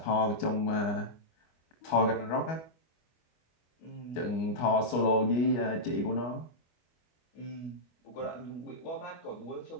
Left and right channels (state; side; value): late; right; 25 ms